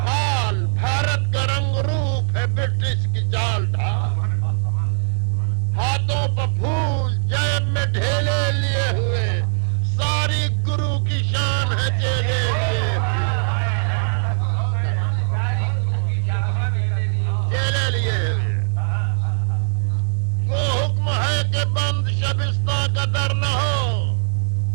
حال بھارت کا رنگ روپ ہے برٹش کی چال ڈھال، ہاتھوں پہ پھول جیب میں ڈھیلے لیے ہوئے، ساری گرو کی شان ہے چیلے لیے ہوئے، چیلے لیے ہوئے۔ وہ حکم ہے کہ بند شبستہ کا در نہ ہو،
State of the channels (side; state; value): left; silent; 65 dB below the other